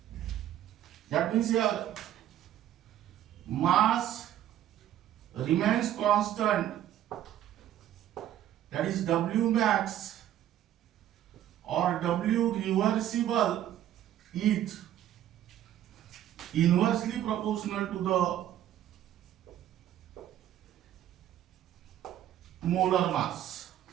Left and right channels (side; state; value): left; quieter; 11.9 dB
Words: That means here mass remains constant, that is W max or W reversible is inversely proportional to the molar mass.